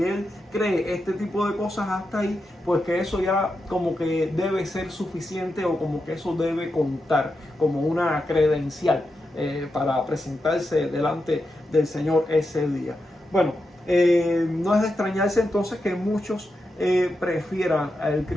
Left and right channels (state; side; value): normal; both; correlation 0.87